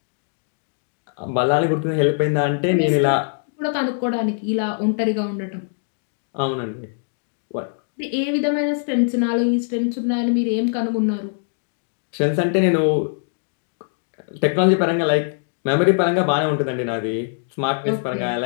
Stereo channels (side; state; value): right; silent; digital silence